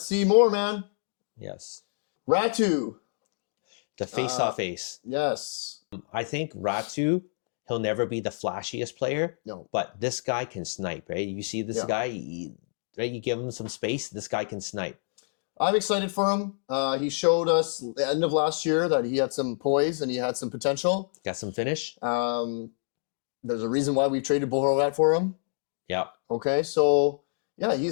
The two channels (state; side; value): silent; right; digital silence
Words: see more, man. Yes. Ratu. The face-off ace. Yes. I think Ratu, he'll never be the flashiest player. No. But this guy can snipe, right? You see this guy, right? You give him some space, this guy can snipe. I'm excited for him. He showed us at the end of last year that he had some poise and he had some potential. Got some finish. There's a reason why we traded Boeser for him. Yeah. Okay, so yeah,